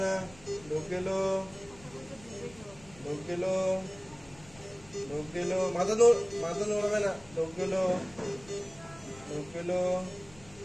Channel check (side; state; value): left; noise; rumble, 22 dB below the sound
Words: না। ঢোক গেল, ঢোক গেল, ঢোক গেল, মাথা নড়াবে না। ঢোক গেল, ঢোক গেল,